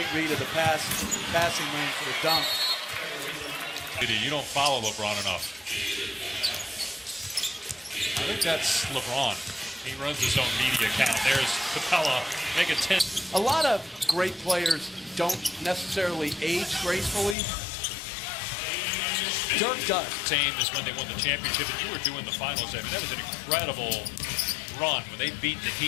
read of the passing lane for the dunk. You don't follow LeBron enough. I think that's LeBron. He runs his own media account. There's Capella, make it 10. A lot of great players don't necessarily age gracefully. Dirk does. Same as when they won the championship, and you were doing the finals. I mean, that was an incredible run when they beat the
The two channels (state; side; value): drops out; right; at 17.4 s